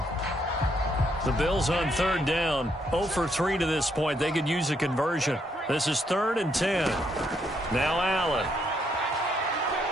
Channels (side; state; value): both; normal; correlation 0.74